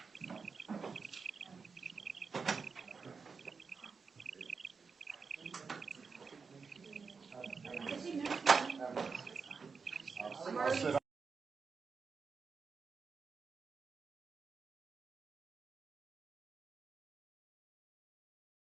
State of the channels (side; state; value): left; quieter; 5.1 dB